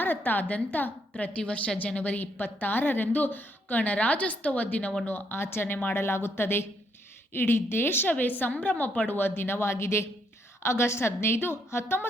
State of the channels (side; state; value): both; normal; correlation 0.73